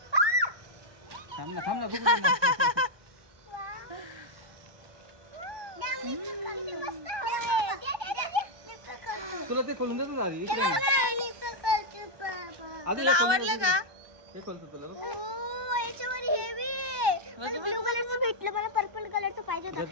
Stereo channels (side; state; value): left; late; 1.2 ms